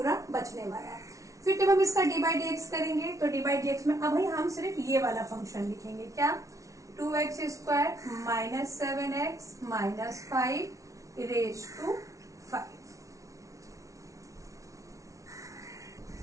बचने वाला है। फिर जब हम इसका डी बाई डी एक्स करेंगे तो डी बाई डी एक्स में अब हम सिर्फ ये वाला फंक्शन लिखेंगे। क्या? 2x² minus 7x minus 5 raise to 5।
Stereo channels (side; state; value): left; late; 0.16 ms